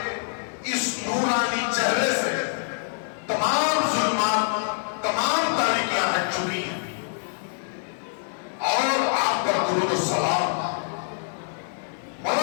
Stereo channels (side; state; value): right; silent; digital silence